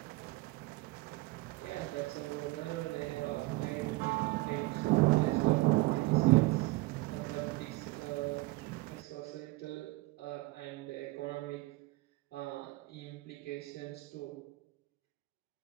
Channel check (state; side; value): quieter; left; 21.7 dB